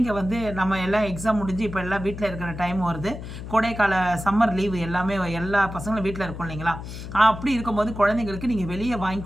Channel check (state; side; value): noise; left; hum, 10 dB below the sound